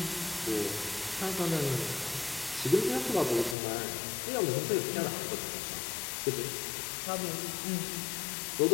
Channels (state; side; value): drops out; right; at 3.6 s